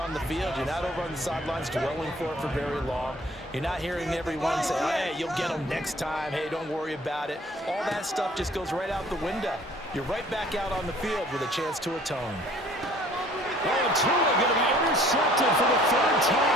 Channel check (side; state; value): both; normal; correlation 0.54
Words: on the field. You're not over on the sidelines dwelling for it for very long. You're not hearing everyone say, oh, hey, you'll get them next time. Hey, don't worry about it. All that stuff just goes right out the window. You're right back out on the field with a chance to atone. And Tua going to be intercepted for the 3rd